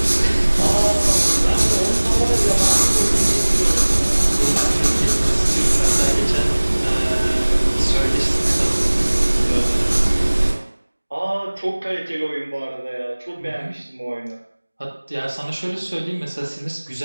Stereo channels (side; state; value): both; inverted; correlation -1.00